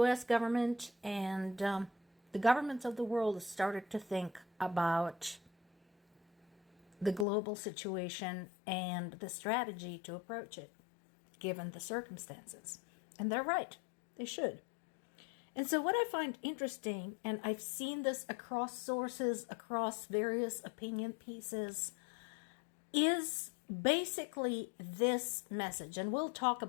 government and the governments of the world started to think about the global situation and the strategy to approach it, given the circumstances. And they're right. They should. And so what I find interesting, and I've seen this across sources, across various opinion pieces, is basically this message. And we'll talk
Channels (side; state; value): right; drops out; at 7.2 s